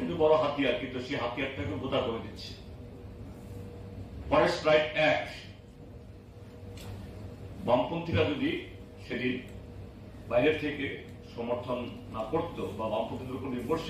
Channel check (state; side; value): identical; both; correlation 1.00